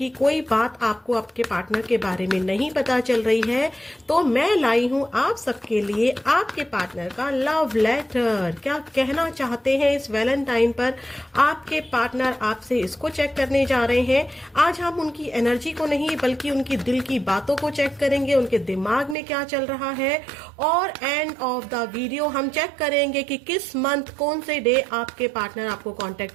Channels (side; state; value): left; drops out; at 19.2 s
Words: कोई बात आपको आपके पार्टनर के बारे में नहीं पता चल रही है, तो मैं लाई हूँ आप सबके लिए आपके पार्टनर का लव लेटर। क्या कहना चाहते हैं इस वैलेंटाइन पर आपके पार्टनर आपसे, इसको चेक करने जा रहे हैं। आज हम उनकी एनर्जी को नहीं बल्कि उनकी दिल की बातों को चेक करेंगे, उनके दिमाग में क्या चल रहा है। और एंड ऑफ द वीडियो हम चेक करेंगे कि किस मंथ कौन से डे आपके पार्टनर आपको